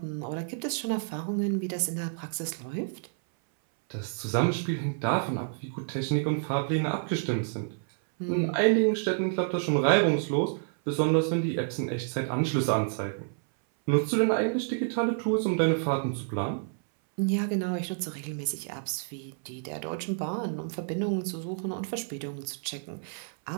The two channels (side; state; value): left; silent; 58 dB below the other